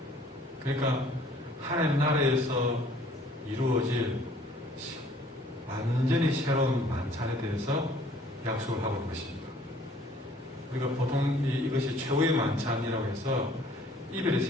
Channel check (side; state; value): both; normal; correlation 0.57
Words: 그러니까 하나님 나라에서 이루어질 완전히 새로운 만찬에 대해서 약속을 하고 있는 것입니다. 우리가 보통 이것이 최후의 만찬이라고 해서 이별의